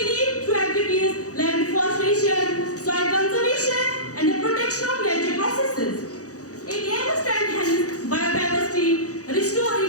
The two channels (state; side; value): late; right; 0.66 ms